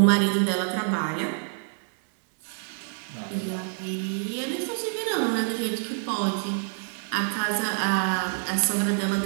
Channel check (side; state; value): left; silent; digital silence